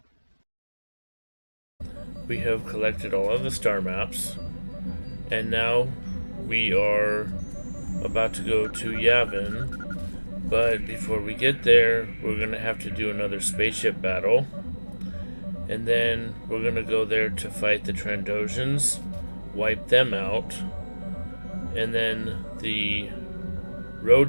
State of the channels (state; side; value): inverted; both; correlation -1.00